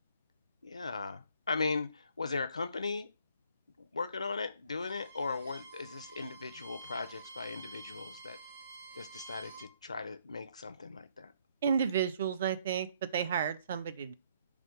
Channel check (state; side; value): inverted; both; correlation -0.66